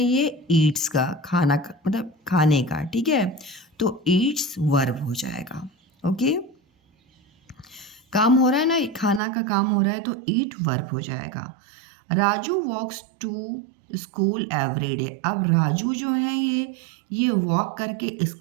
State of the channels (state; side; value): drops out; left; at 9.2 s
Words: ये ईट्स का खाना मतलब खाने का। ठीक है, तो ईट्स वर्ब हो जाएगा। ओके, काम हो रहा है ना, खाना का काम हो रहा है, तो ईट वर्ब हो जाएगा। Raju walks to school every day. अब राजू जो है ये वॉक करके